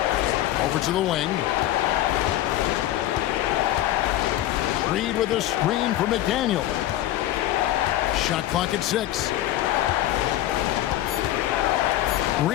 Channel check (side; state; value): right; quieter; 14.0 dB